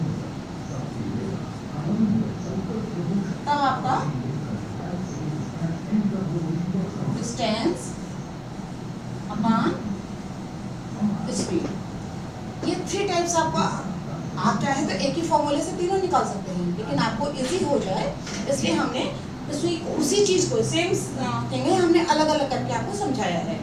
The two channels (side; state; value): both; identical; correlation 1.00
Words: तब आपका डिस्टेंस अपॉन स्पीड. ये 3 टाइप्स आपका, आप चाहे तो एक ही फॉर्मूले से तीनों निकाल सकते हैं, लेकिन आपको इजी हो जाए इसलिए हमने उसी चीज़ को सेम थिंग है, हमने अलग अलग करके आपको समझाया है.